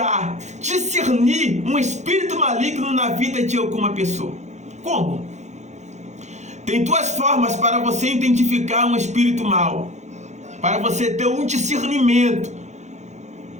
discernir um espírito maligno na vida de alguma pessoa? Como? Tem duas formas para você identificar um espírito mau, para você ter um discernimento.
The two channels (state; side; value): late; left; 0.33 ms